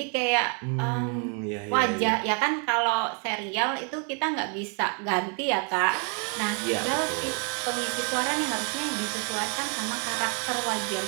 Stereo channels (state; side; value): quieter; left; 39.1 dB